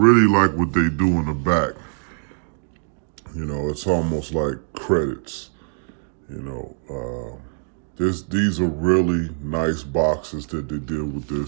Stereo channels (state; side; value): silent; left; digital silence